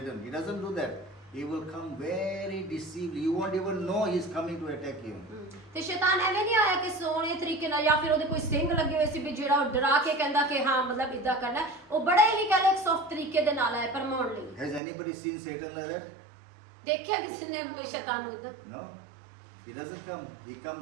He doesn't do that. He will come very deceived. You won't even know he's coming to attack you. ਤੇ ਸ਼ੈਤਾਨ ਐਵੇਂ ਨਹੀਂ ਆਇਆ ਕਿ ਸੋਹਣੇ ਤਰੀਕੇ ਨਾਲ ਜਾਂ ਫਿਰ ਉਹਦੇ ਕੋਈ ਸਿੰਘ ਲੱਗੇ ਹੋਏ ਸੀ ਵੀ ਜਿਹੜਾ ਉਹ ਡਰਾ ਕੇ ਕਹਿੰਦਾ ਕਿ ਹਾਂ ਮਤਲਬ ਇਦਾਂ ਕਰਨਾ, ਉਹ ਬੜੇ ਹੀ ਕਹਿੰਦੇ ਇੱਕ ਸੌਫਟ ਤਰੀਕੇ ਦੇ ਨਾਲ ਆਇਆ ਪਰਮਾਉਣ ਲਈ। Has anybody seen Satan like that? ਦੇਖਿਆ ਕਿਸੇ ਨੇ ਸ਼ੈਤਾਨ ਨੂੰ ਇਦਾਂ? No. He doesn't come. He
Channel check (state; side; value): drops out; left; at 14.8 s